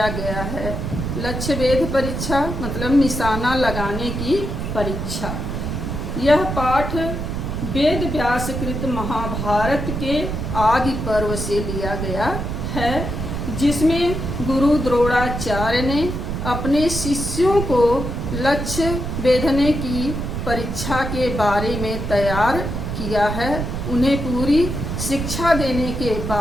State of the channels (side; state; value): right; noise; rumble, 4 dB below the sound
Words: गया है। लक्ष्य भेद परीक्षा मतलब निशाना लगाने की परीक्षा। यह पाठ वेद व्यासकृत महाभारत के आदि पर्व से लिया गया है, जिसमें गुरु द्रोणाचार्य ने अपने शिष्यों को लक्ष्य भेदने की परीक्षा के बारे में तैयार किया है। उन्हें पूरी शिक्षा देने के